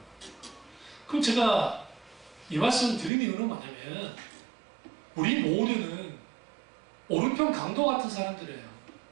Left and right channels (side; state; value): left; drops out; at 3.1 s